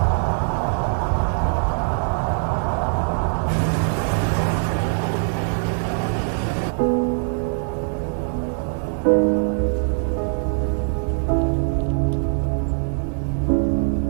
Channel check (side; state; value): left; silent; 64 dB below the other